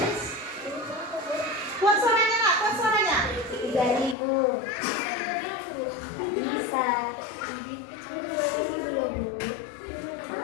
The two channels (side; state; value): right; drops out; at 4.2 s